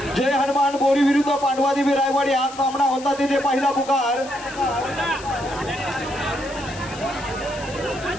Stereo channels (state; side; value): noise; left; hiss, 16 dB below the sound